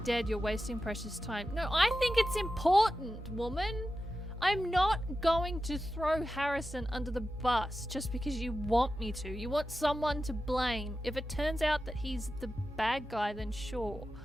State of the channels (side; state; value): both; normal; correlation 0.92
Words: dead. You're wasting precious time. No, I think it's important, woman. I'm not going to throw Harrison under the bus just because you want me to. You want someone to blame. If it turns out that he's the bad guy, then sure.